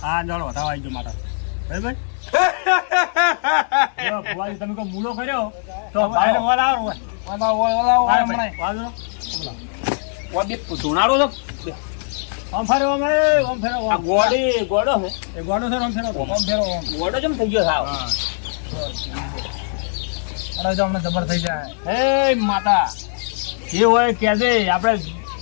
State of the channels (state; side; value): silent; right; 61 dB below the other